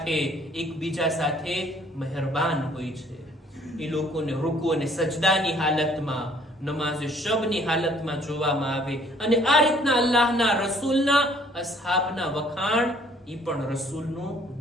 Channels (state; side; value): normal; both; correlation 0.59